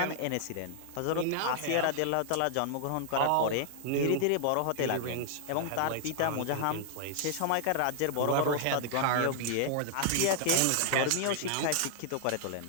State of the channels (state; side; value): different; both; correlation -0.01